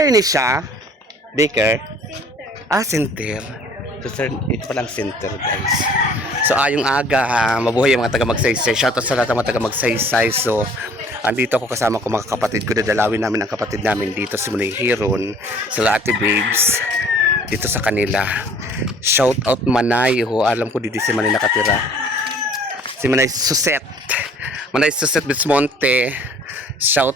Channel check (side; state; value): both; normal; correlation 0.54